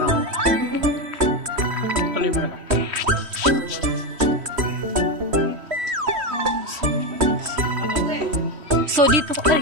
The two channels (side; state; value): left; late; 3.1 ms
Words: Tuloy mo na lang. So